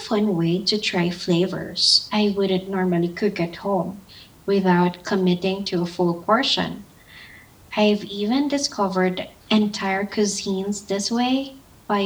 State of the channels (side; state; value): both; identical; correlation 1.00